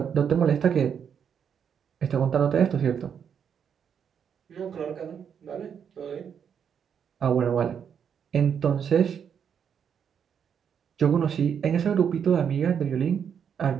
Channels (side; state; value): left; quieter; 7.7 dB